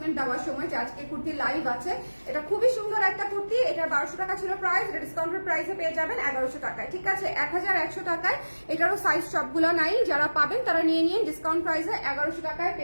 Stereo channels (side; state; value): both; inverted; correlation -1.00